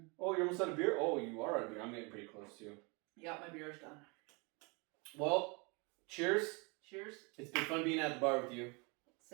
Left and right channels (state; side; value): quieter; left; 30.4 dB